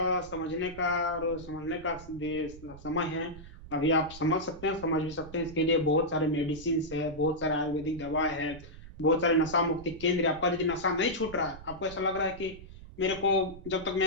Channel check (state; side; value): noise; right; rumble, 16 dB below the sound